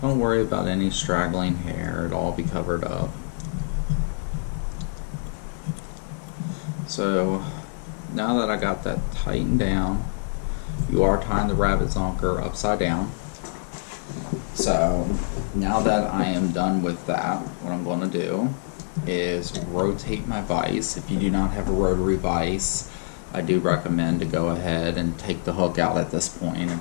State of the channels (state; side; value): silent; right; digital silence